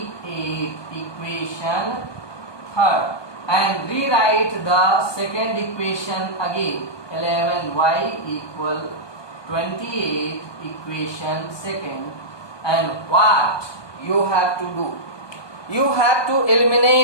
equation third. And rewrite the second equation again, 11y equal 28 equation second. And what you have to do? You have to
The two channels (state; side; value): late; right; 1.2 ms